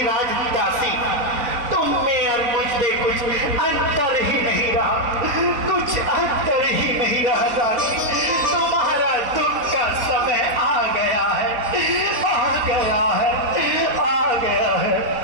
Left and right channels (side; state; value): left; late; 4.0 ms